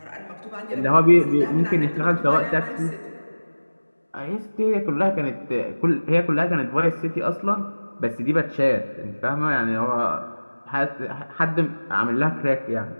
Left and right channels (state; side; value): inverted; both; correlation -1.00